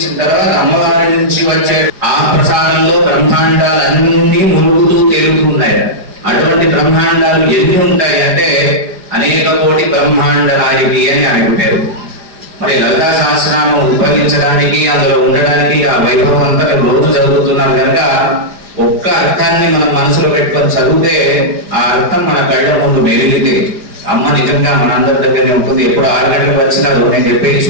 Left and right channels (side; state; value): left; late; 4.9 ms